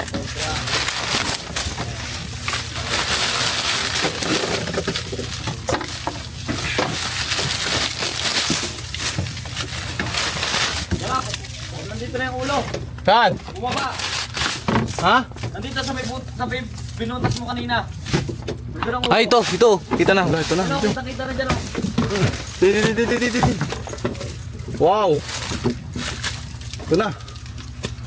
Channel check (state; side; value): identical; both; correlation 1.00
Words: Nandito na yung ulo. Saan? Bumaba. Ha? Nandito sa may binutas mo kanina. Nandito na ang ulo. Ay, ito. Kita na. Ito na. Ano, kita na dyan. Di. Wow! Ito na.